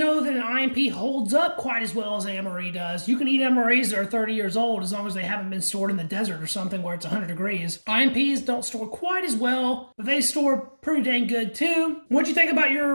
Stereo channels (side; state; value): both; inverted; correlation -1.00